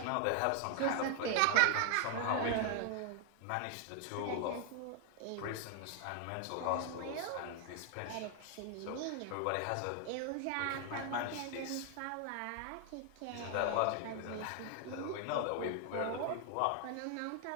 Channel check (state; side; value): different; both; correlation 0.00